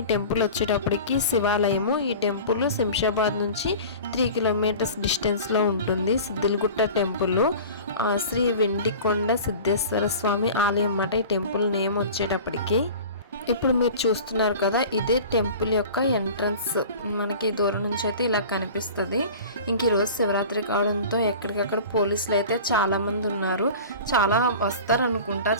టెంపుల్ వచ్చేటప్పటికి శివాలయము. ఈ టెంపుల్ శంషాబాద్ నుంచి 3 కిలోమీటర్స్ డిస్టెన్స్లో ఉంటుంది. సిద్దిలగుట్ట టెంపుల్ శ్రీ వెండికొండ సిద్ధేశ్వర స్వామి ఆలయం అన్నమాట ఈ టెంపుల్ నేమ్ వచ్చేటప్పటికి. ఇప్పుడు మీరు చూస్తున్నారు కదా, ఇదే టెంపుల్ యొక్క ఎంట్రన్స్. మనకి దూరం నుంచి అయితే ఇలా కనిపిస్తుంది. ఇంక ఈరోజు శివరాత్రి కావడంతో ఎక్కడికక్కడ పోలీసులు అయితే చాలామంది ఉన్నారు. చాలా వస్తారు అనుకుంటా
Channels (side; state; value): both; inverted; correlation -0.38